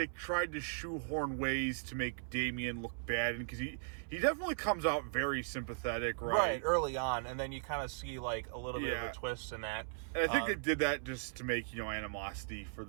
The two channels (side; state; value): left; silent; 53 dB below the other